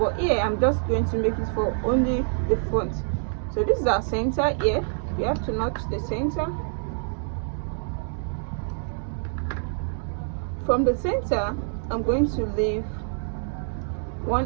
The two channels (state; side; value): silent; left; digital silence